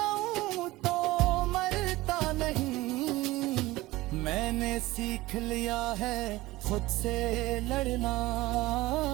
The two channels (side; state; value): left; quieter; 18.9 dB